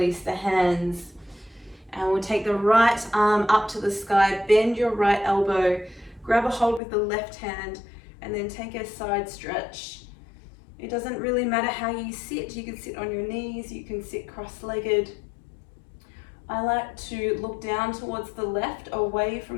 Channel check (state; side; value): drops out; right; at 6.8 s